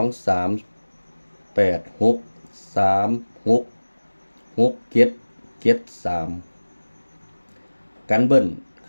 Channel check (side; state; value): both; inverted; correlation -1.00